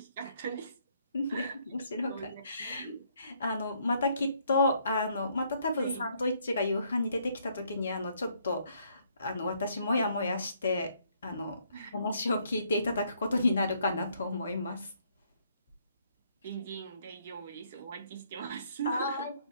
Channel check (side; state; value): both; inverted; correlation -0.68